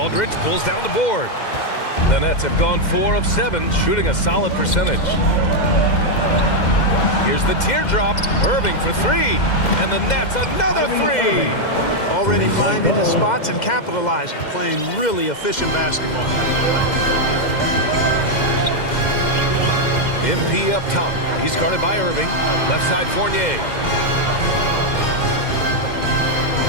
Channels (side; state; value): right; late; 2.1 ms